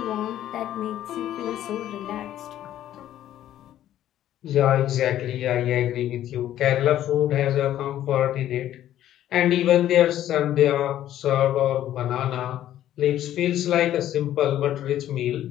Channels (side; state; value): right; quieter; 12.2 dB